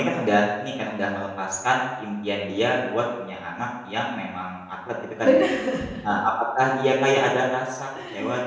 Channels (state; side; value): identical; both; correlation 1.00